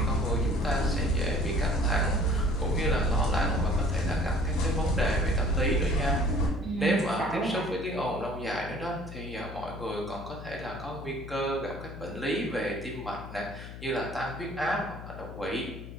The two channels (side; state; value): left; noise; hum, 12 dB below the sound